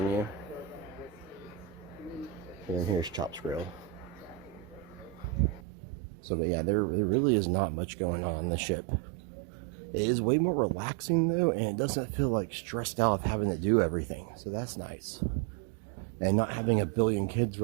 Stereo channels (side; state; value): left; drops out; at 5.6 s